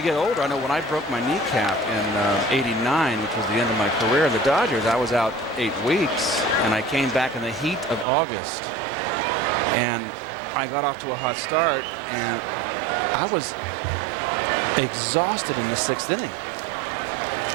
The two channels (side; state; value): left; drops out; at 8.1 s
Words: get older, I know when I broke my kneecap in '89, which was the end of my career in the Dodgers, I was out 8 weeks, and I came back in the heat of August, and I got off to a hot start, and I was exhausted in the 6th inning.